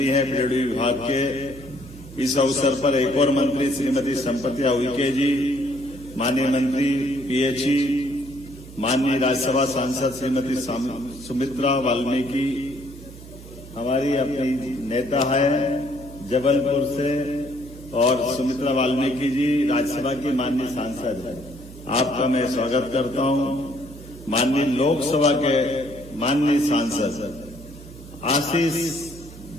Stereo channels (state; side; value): noise; right; hum, 17 dB below the sound